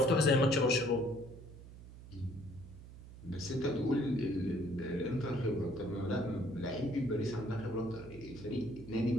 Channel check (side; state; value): right; noise; hum, 16 dB below the sound